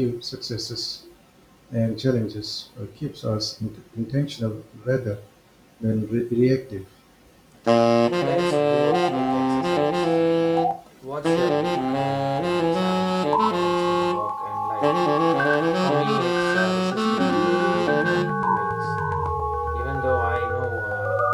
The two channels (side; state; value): both; identical; correlation 1.00